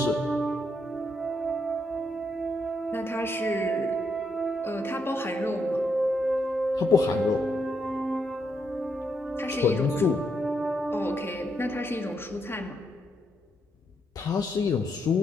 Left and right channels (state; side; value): normal; both; correlation 0.78